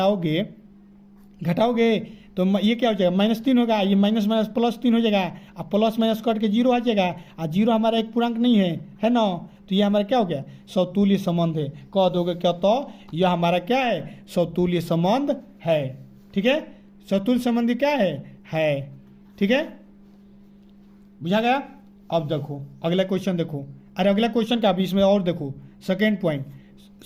तो ये क्या हो जाएगा, -3 होगा, ये माइनस माइनस +3 हो जाएगा, अब प्लस माइनस कट के 0 आ जाएगा, और 0 हमारा एक पूर्णांक नहीं है ना। तो ये हमारा क्या हो गया, समतुल्य संबंध है। कह दोगे क्या, तो यह हमारा क्या है, समतुल्य संबंध है। ठीक है, समतुल्य संबंध क्या है। ठीक है, बुझा गया। अब देखो अगला क्वेश्चन देखो, अरे अगला क्वेश्चन का भी इसमें और देखो, सेकेंड पॉइंट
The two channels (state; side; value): identical; both; correlation 1.00